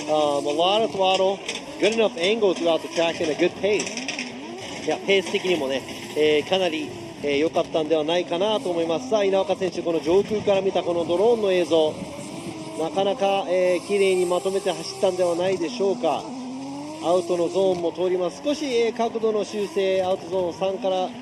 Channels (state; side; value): identical; both; correlation 1.00